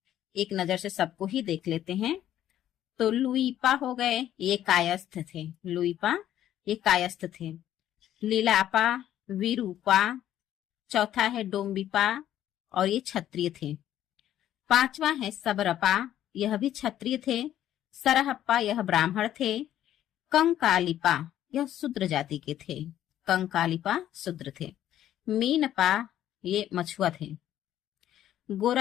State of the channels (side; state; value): right; quieter; 11.8 dB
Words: एक नजर से सबको ही देख लेते हैं। तो लुईपा हो गए, ये कायस्थ थे। लुईपा ये कायस्थ थे। लीलापा, विरूपा, चौथा है डोम्बिपा और ये क्षत्रिय थे। 5वां है सबरपा, यह भी क्षत्रिय थे। सरहप्पा यह ब्राह्मण थे। कंकालिपा यह शूद्र जाति के थे। कंकालिपा शूद्र थे। मीनपा ये मछुआ थे।